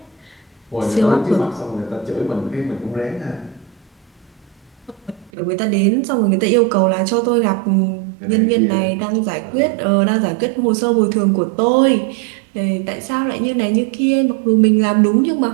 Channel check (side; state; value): left; drops out; at 5.3 s